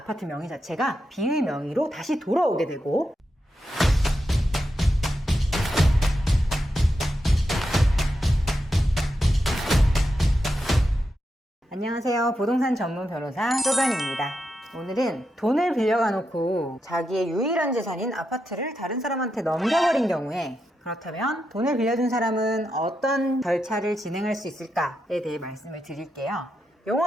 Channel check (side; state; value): both; normal; correlation 0.86